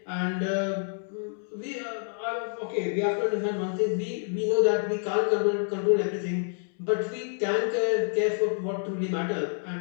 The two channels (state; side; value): silent; right; 59 dB below the other